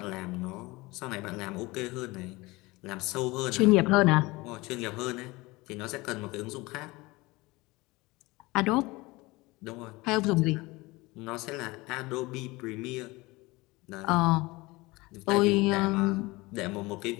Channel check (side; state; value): right; quieter; 22.2 dB